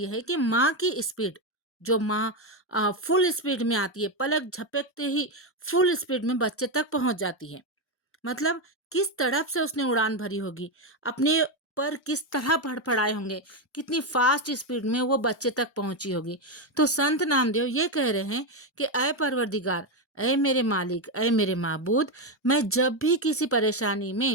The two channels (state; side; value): normal; both; correlation 0.09